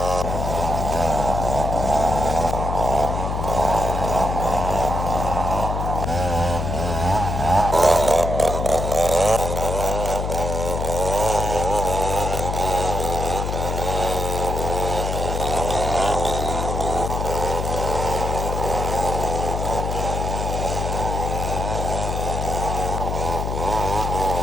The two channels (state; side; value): noise; left; hum, 2 dB below the sound